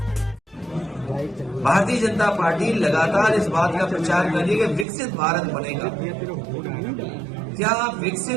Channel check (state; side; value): drops out; left; at 4.9 s